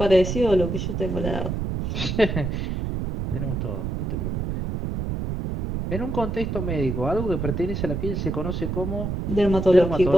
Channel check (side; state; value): right; noise; rumble, 3 dB below the sound